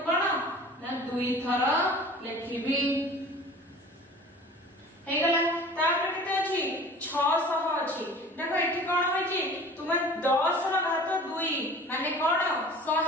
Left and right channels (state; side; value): normal; both; correlation 0.44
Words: कोन ना 2 थर लिखिबी हे गला तापर केते अछि 600 अछि देखो एठी कोन होय छी तुमे 10 ର घात 2 माने कोन